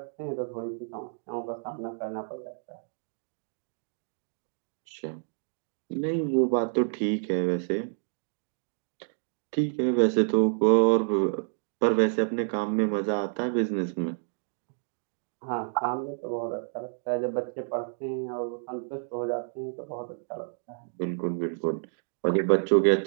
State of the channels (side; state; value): left; silent; 58 dB below the other